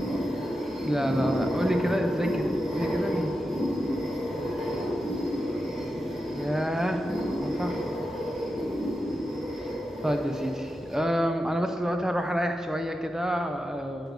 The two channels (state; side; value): normal; both; correlation 0.89